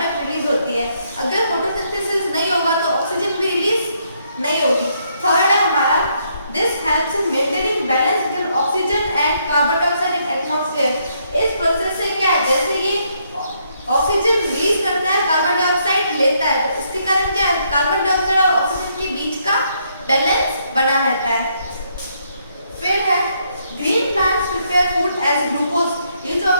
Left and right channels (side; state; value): both; inverted; correlation -0.73